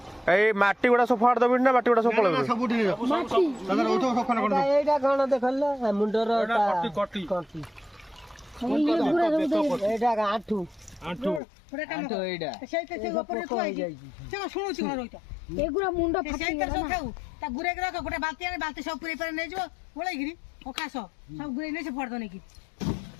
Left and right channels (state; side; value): drops out; right; at 11.4 s